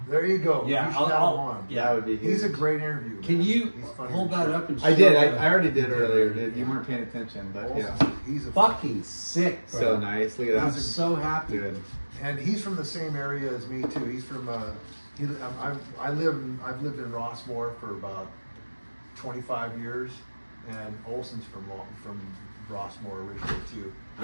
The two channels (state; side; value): inverted; both; correlation -1.00